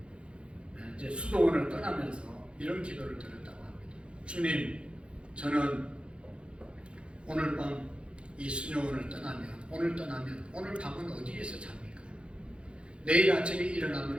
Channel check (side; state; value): left; late; 0.058 ms